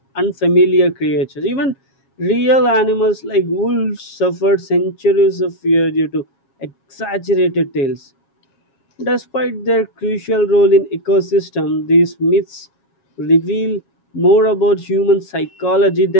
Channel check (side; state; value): right; late; 7.3 ms